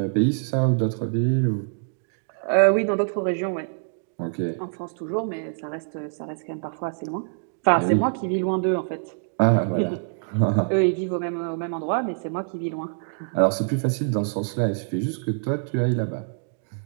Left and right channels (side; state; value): left; silent; digital silence